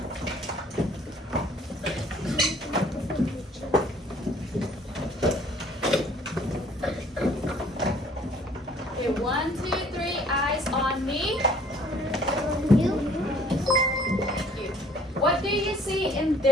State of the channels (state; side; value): normal; both; correlation 0.57